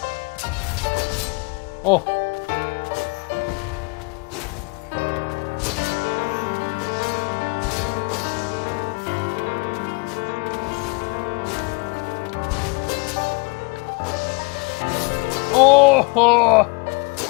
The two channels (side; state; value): right; quieter; 30.9 dB